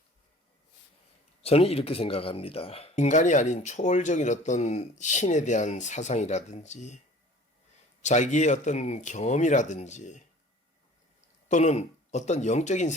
저는 이렇게 생각합니다. 인간이 아닌 초월적인 어떤 신에 대한 사상이라든지 자기의 어떤 경험이라든지 또는 어떤 영적인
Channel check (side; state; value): both; normal; correlation 0.47